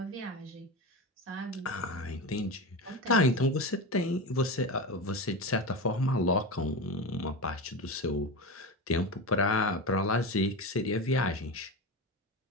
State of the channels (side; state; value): both; normal; correlation 0.22